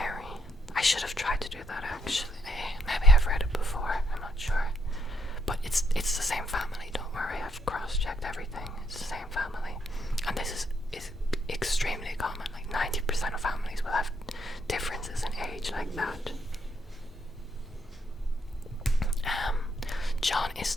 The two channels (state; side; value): normal; both; correlation 0.75